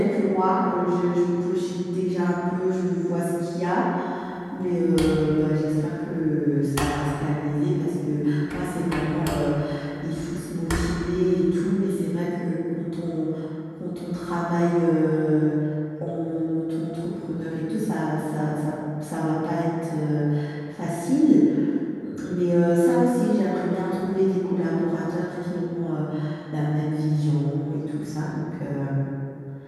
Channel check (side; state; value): both; identical; correlation 1.00